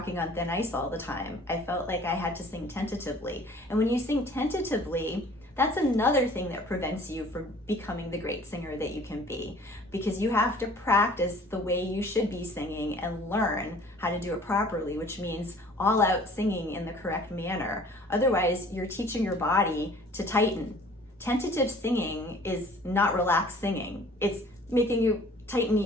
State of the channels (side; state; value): both; normal; correlation 0.51